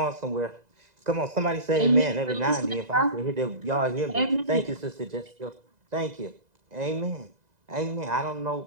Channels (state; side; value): late; left; 2.0 ms